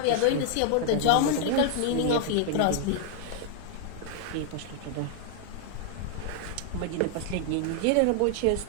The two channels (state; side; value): different; both; correlation 0.00